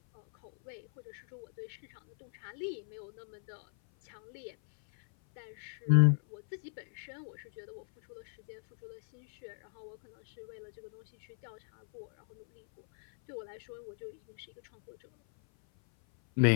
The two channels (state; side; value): silent; right; 54 dB below the other